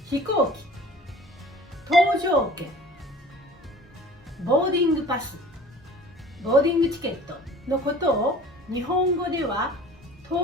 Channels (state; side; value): normal; both; correlation 0.45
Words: 飛行機、搭乗券、ボーディングパス、ボーディングチケットのことを日本語では